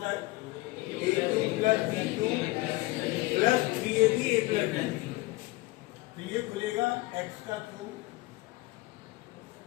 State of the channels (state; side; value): quieter; right; 20.7 dB